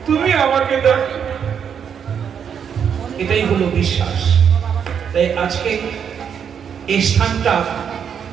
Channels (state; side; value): quieter; left; 7.7 dB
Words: তুমি আমাকে দেখো, এটাই হলো বিশ্বাস। তাই আজকে এই স্থানটা